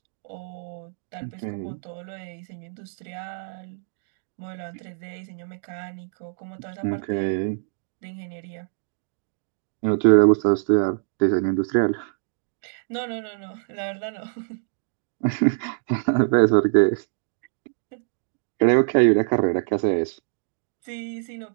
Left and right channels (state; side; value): silent; left; digital silence